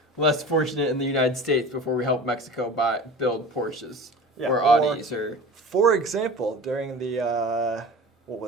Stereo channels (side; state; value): both; normal; correlation 0.36